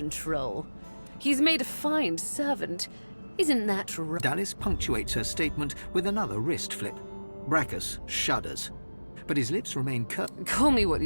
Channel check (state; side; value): inverted; both; correlation -1.00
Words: He's made a fine servant. Isn't that right? Dallas punctuates her statement with another wrist flip. Brachus shudders. but his lips remain curved. Call me what